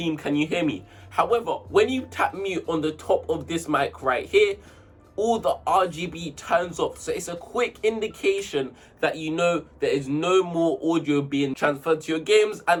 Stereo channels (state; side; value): identical; both; correlation 1.00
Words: can you hear me? However, when you tap mute on the top of this mic right here, all the RGB turns off. So it's a quick indication that you know there is no more audio being transferred to your games.